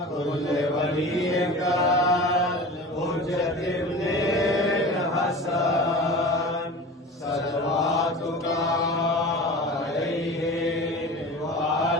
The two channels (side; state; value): both; normal; correlation 0.35